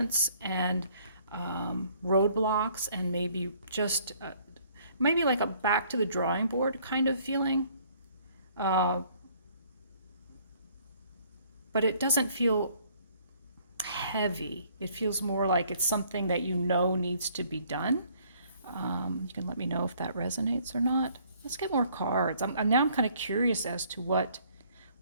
and roadblocks, and maybe just maybe like a back to the drawing board kind of feeling. But it doesn't feel heavy. It feels more like it's something that you know needs to be done. You can let me know if that resonates or not. Let's get more cards. Now I'm kind of curious as to what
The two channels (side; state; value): both; inverted; correlation -0.61